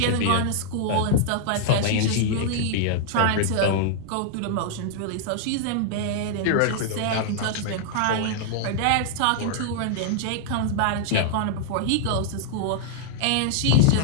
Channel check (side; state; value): both; different; correlation -0.01